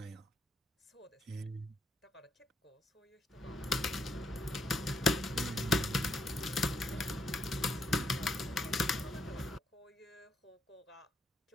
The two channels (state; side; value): normal; both; correlation 0.76